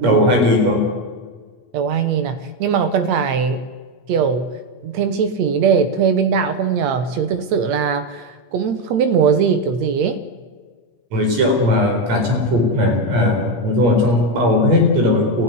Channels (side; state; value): left; late; 8.6 ms